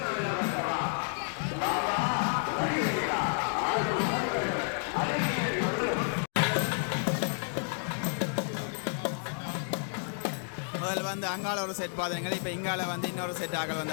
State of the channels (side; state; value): right; silent; 55 dB below the other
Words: முதல்ல வந்து அங்கால ஒரு செட் பார்த்துருங்க. இப்போ இங்கால வந்து இன்னொரு செட் ஆகல